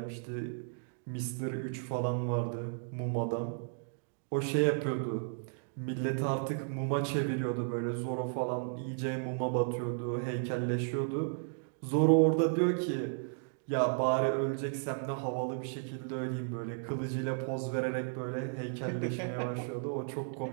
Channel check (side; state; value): left; silent; digital silence